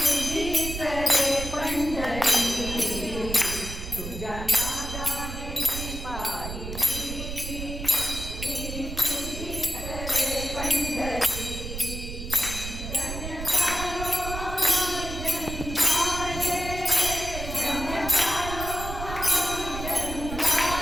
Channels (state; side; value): noise; right; rumble, 7 dB below the sound